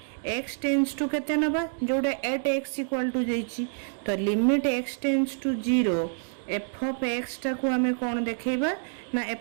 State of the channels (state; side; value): silent; left; digital silence